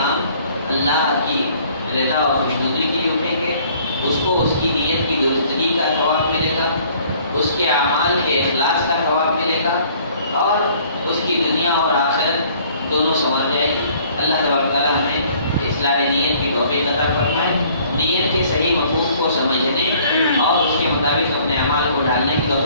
اللہ کی رضا اور خوشنودی کے لیے اٹھیں گے، اس کو اس کی نیت کی درستگی کا ثواب ملے گا، اس کے اعمال کے اخلاص کا ثواب ملے گا، اور اس کی دنیا اور آخرت دونوں سنور جائے گی۔ اللہ تبارک تعالیٰ ہمیں اصلاح نیت کی توفیق عطا فرمائے، نیت کے صحیح مفہوم کو سمجھنے اور اس کے مطابق اپنے اعمال کو ڈالنے کی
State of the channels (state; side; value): inverted; both; correlation -0.57